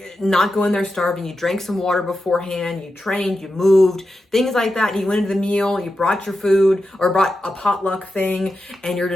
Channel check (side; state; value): both; normal; correlation 0.90